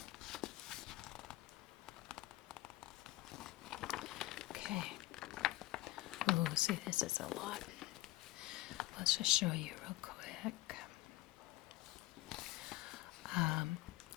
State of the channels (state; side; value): quieter; right; 17.9 dB